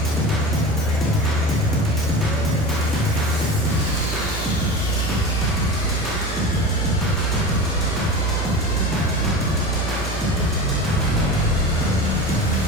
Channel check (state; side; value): normal; both; correlation 0.30